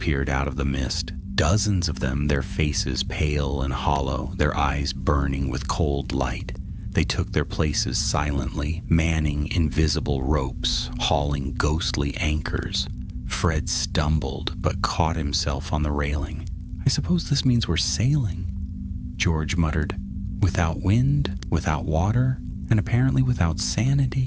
out of the mist, Dozens of them, their faces pale and hollow, their eyes burning with cold light. They took their places silently, manning invisible ropes, hauling ghostly anchors. Fred stumbled, but caught himself on the railing. "I suppose this means we're sailing," George muttered. "Without wind, without water, and apparently without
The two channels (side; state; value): both; identical; correlation 1.00